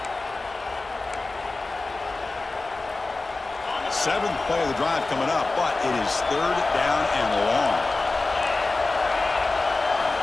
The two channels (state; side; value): quieter; right; 3.4 dB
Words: Seventh play of the drive coming up, but it is third down and long.